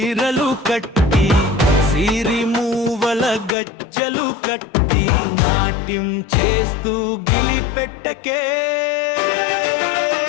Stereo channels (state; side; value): drops out; right; at 3.5 s